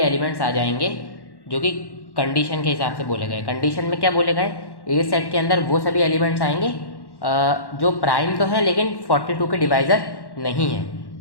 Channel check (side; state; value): right; late; 1.1 ms